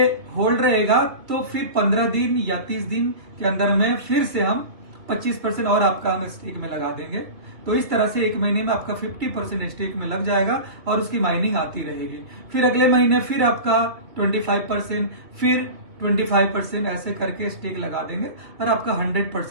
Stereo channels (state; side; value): late; left; 2.8 ms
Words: होल्ड रहेगा तो फिर 15 दिन या 30 दिन के अंदर में फिर से हम 25% और आपका हम स्टेक में लगा देंगे। तो इस तरह से 1 महीने में आपका 50% स्टेक में लग जाएगा और उसकी माइनिंग आती रहेगी। फिर अगले महीने फिर आपका 25%, फिर 25%, ऐसे करके स्टेक लगा देंगे और आपका